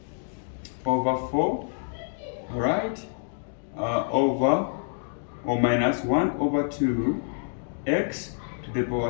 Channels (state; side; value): silent; right; digital silence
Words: over 4, alright, over or minus 1 over 2 x to the